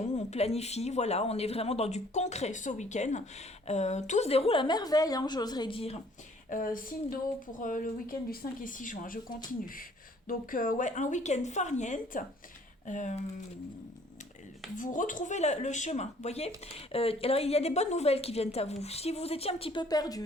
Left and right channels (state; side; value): normal; both; correlation 0.59